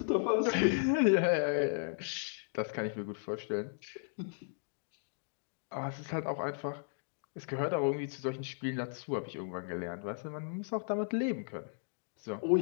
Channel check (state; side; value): silent; right; digital silence